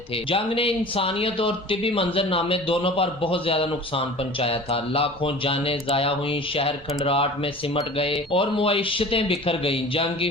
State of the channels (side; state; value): right; noise; rumble, 23 dB below the sound